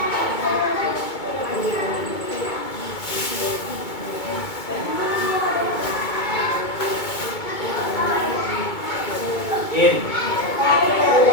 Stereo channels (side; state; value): right; late; 2.2 ms